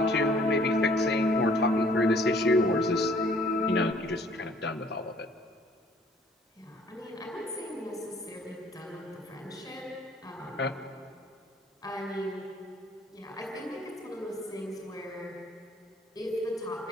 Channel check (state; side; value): normal; both; correlation 0.58